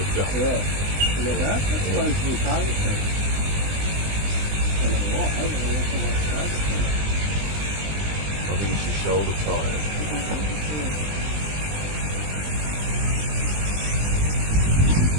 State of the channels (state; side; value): late; left; 20 ms